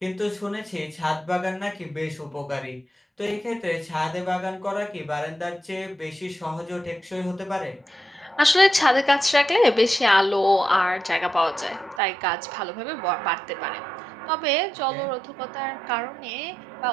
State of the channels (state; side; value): drops out; left; at 12.0 s